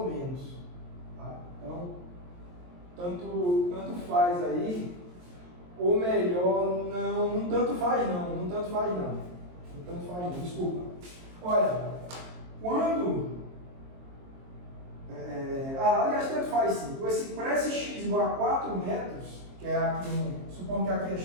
menos. Tá? Então, tanto faz aí, ou melhor, não tanto faz não, desculpa. Olha, quando... aliás, tanto faz sim. Para esse x igual a 4 metros, que é aqui, supondo que aqui é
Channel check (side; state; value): left; late; 23 ms